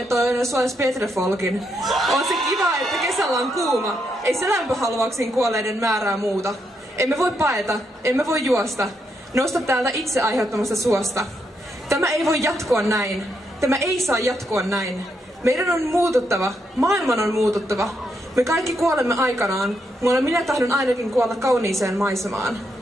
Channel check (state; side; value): normal; both; correlation 0.80